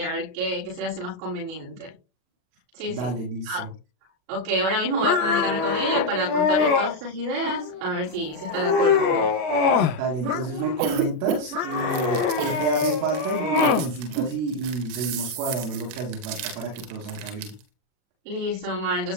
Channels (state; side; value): late; left; 40 ms